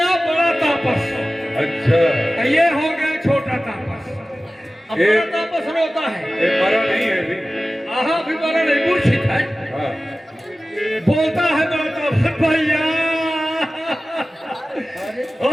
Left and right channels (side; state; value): both; normal; correlation 0.96